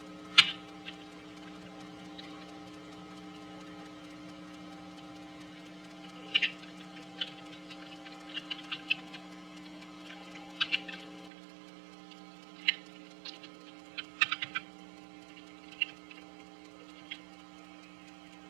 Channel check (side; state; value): left; drops out; at 11.3 s